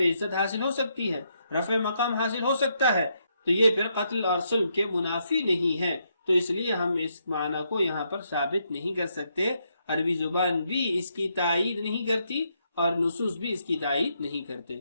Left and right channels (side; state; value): both; inverted; correlation -0.77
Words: عزت حاصل ہو سکتی ہے، رفع مقام حاصل ہو سکتا ہے، تو یہ پھر قتل اور صلب کے منافی نہیں ہے، تو اس لیے ہم اس معنی کو یہاں پر ثابت نہیں کر سکتے۔ عربی زبان بھی اس کی تائید نہیں کرتی اور نصوص بھی اس کی تائید نہیں کرتے۔